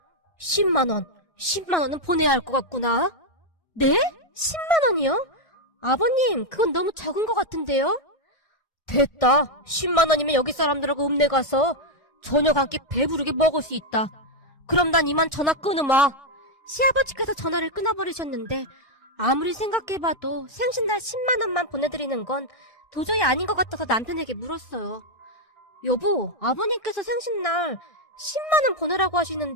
10만 원. 10만 원은 보내야 할 것 같구나. 네? 10만 원이요? 아버님, 그건 너무 적은 것 같은데요? 됐다. 10만 원이면 여기 사람들하고 읍내 가서 저녁 한 끼 배부르게 먹을 수 있다. 그럼 난 이만 전화 끊으마. 시아버지께서 전화를 끊어버리셨는데 아무리 생각해봐도 생신날 10만 원만 보내드리는 건 도저히 아닌 것 같아서 남편에게 물었어요. 여보, 아버님께서 생신날 10만 원 보내라고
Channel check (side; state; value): right; late; 1.6 ms